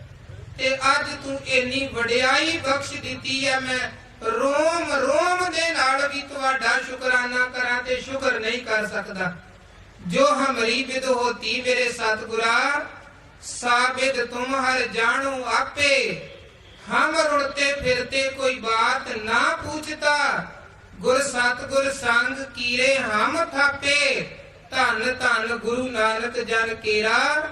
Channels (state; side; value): identical; both; correlation 1.00